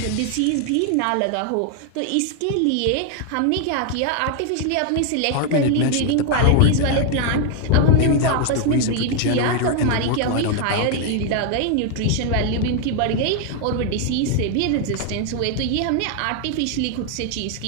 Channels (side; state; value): both; different; correlation 0.01